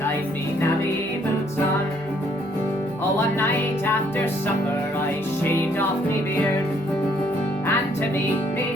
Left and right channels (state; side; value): noise; left; hum, 27 dB below the sound